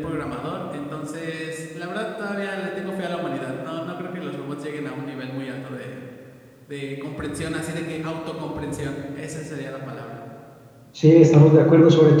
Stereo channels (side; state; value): both; identical; correlation 1.00